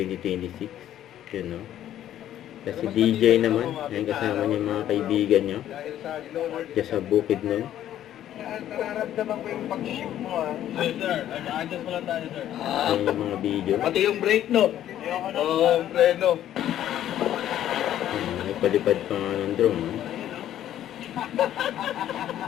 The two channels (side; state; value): right; quieter; 11.7 dB